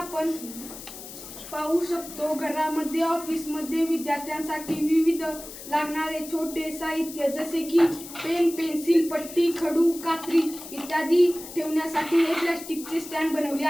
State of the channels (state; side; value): noise; left; hiss, 13 dB below the sound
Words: पाहू शकतो घरामध्ये ऑफिसमध्ये विद्यार्थ्यांसाठी विविध लागणारे छोटे साहित्य जसे की पेन पेन्सिल पट्टी खडू कात्री इत्यादी ठेवण्यासाठी हे प्लास्टिकचे स्टँड बनवले